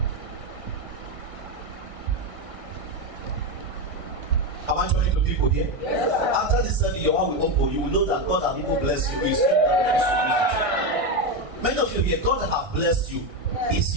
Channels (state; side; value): late; left; 1.6 ms